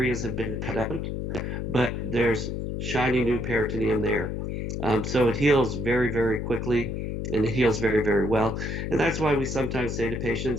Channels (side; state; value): left; noise; hum, 3 dB below the sound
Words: have been cut out, but there's shiny new peritoneum there. So it heals very, very quickly, and it heals very, very well. And that's why we sometimes say to